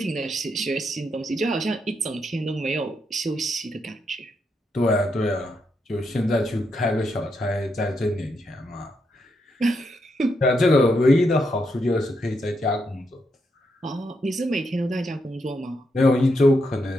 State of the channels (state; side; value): normal; both; correlation 0.81